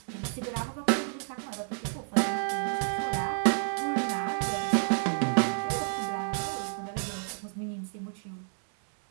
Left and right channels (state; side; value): silent; left; 57 dB below the other